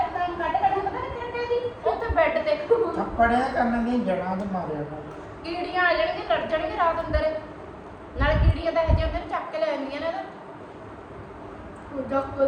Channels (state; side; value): identical; both; correlation 1.00